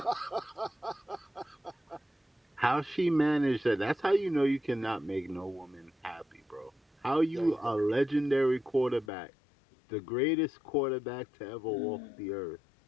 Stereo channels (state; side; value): drops out; right; at 9.1 s